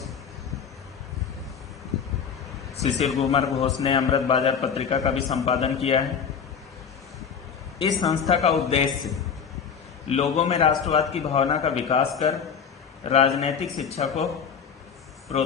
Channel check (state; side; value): quieter; right; 6.9 dB